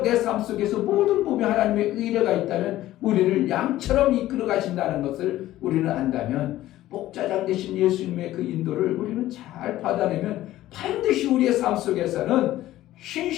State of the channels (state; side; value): quieter; right; 14.8 dB